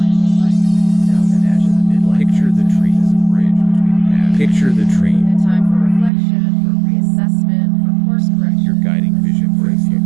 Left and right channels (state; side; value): drops out; left; at 6.1 s